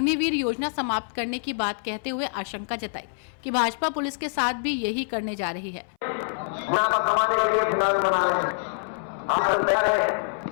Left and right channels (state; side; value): silent; right; 61 dB below the other